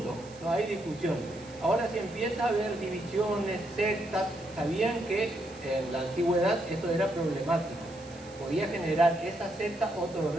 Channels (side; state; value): right; noise; hiss, 22 dB below the sound